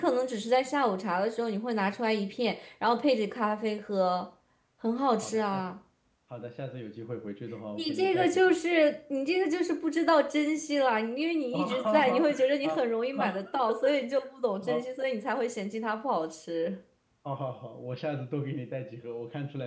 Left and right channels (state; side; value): identical; both; correlation 1.00